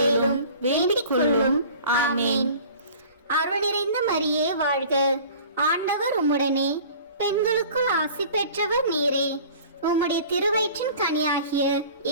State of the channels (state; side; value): inverted; both; correlation -0.45